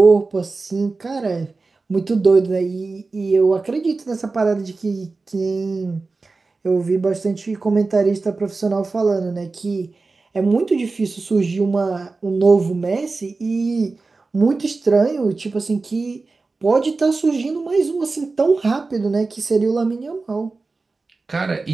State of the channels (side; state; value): left; quieter; 3.8 dB